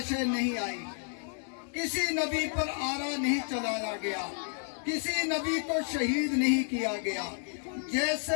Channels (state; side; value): silent; right; 55 dB below the other